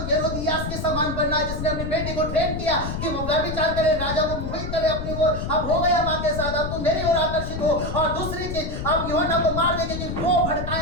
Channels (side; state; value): left; noise; rumble, 5 dB below the sound